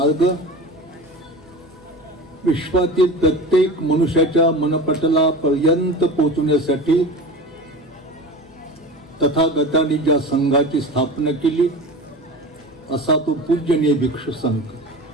विश्वातील प्रत्येक मनुष्याच्या मनपटला पर्यंत पोहोचण्यासाठी तथागतांनी ज्या संघाची स्थापना केली असा तो पूजनीय भिक्षू संघ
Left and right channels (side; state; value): both; normal; correlation 0.32